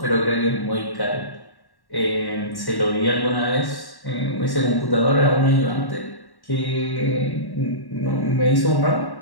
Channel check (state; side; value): late; right; 1.1 ms